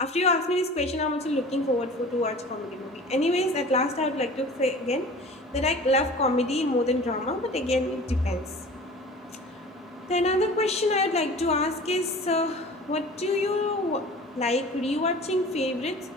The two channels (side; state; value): both; normal; correlation 0.41